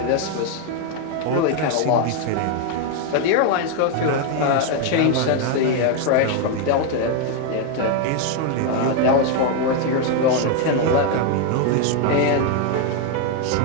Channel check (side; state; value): both; different; correlation 0.01